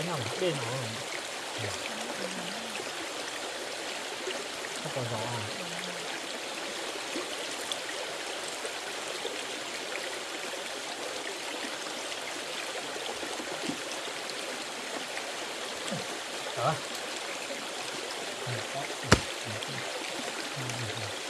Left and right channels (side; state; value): both; identical; correlation 1.00